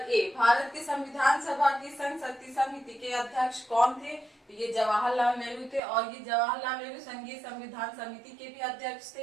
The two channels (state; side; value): drops out; left; at 5.8 s